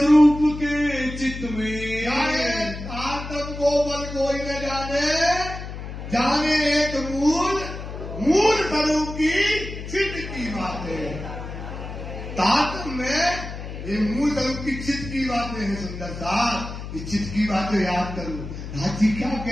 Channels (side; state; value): left; noise; hum, 9 dB below the sound